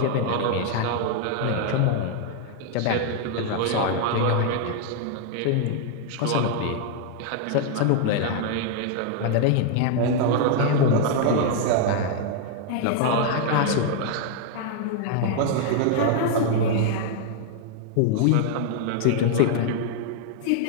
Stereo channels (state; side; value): different; both; correlation 0.00